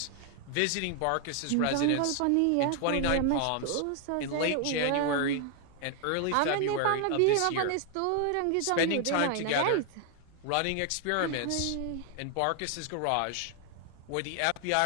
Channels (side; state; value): both; different; correlation 0.00